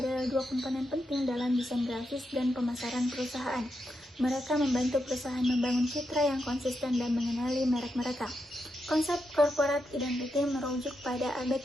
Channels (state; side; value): normal; both; correlation 0.85